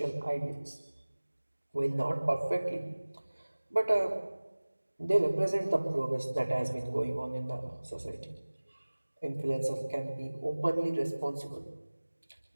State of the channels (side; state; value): both; inverted; correlation -1.00